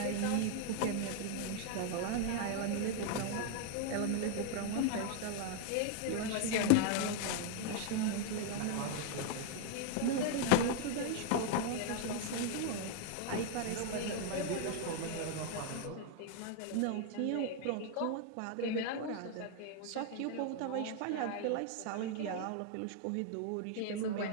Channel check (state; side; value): different; both; correlation 0.00